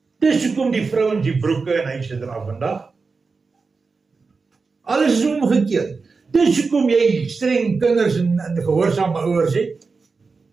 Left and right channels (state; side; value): quieter; left; 4.5 dB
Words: Dis hoekom die vrouens die broeke en huise dra vandag. Alles is omgekeerd. Dis hoekom jy streng kinders en gehoorsame ouers het.